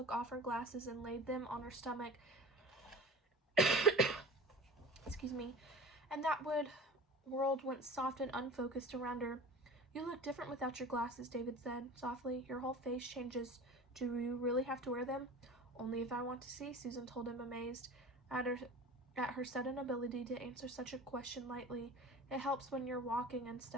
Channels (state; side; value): normal; both; correlation 0.36